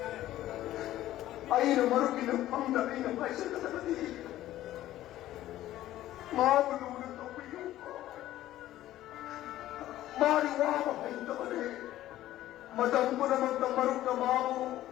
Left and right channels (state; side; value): quieter; right; 14.1 dB